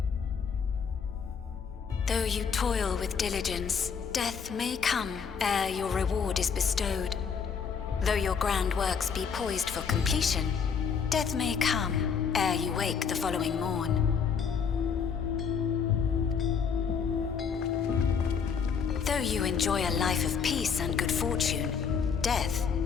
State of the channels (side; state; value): right; quieter; 6.4 dB